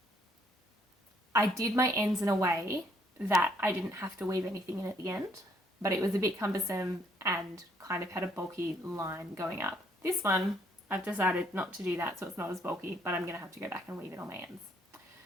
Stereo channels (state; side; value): normal; both; correlation 0.68